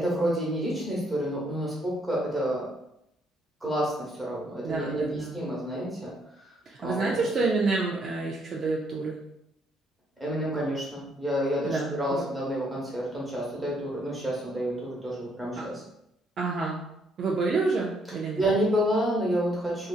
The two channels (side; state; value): both; normal; correlation 0.70